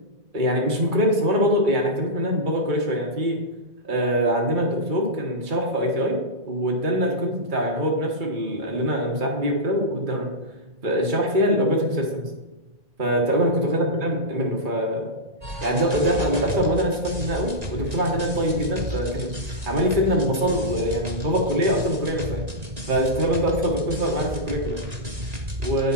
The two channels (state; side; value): late; left; 1.9 ms